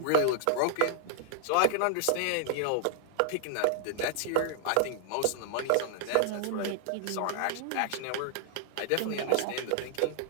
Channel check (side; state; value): both; different; correlation -0.01